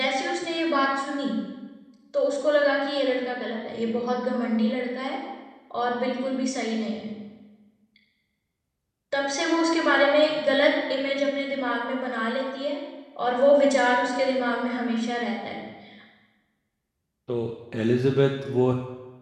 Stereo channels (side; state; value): both; identical; correlation 1.00